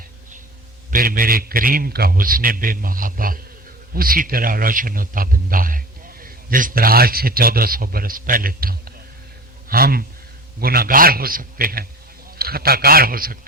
پھر میرے کریم کا حسن بے محابہ اسی طرح روشن و تابندہ ہے جس طرح آج سے 1400 برس پہلے تھا. ہم گناہگار ہو سکتے ہیں, خطا کار ہو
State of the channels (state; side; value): normal; both; correlation 0.35